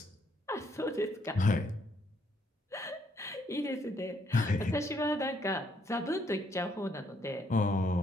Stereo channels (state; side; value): normal; both; correlation 0.71